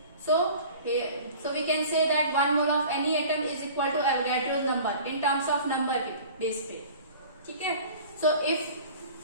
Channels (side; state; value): both; inverted; correlation -0.43